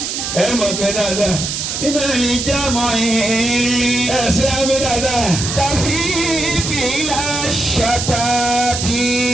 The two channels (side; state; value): right; noise; hiss, 3 dB below the sound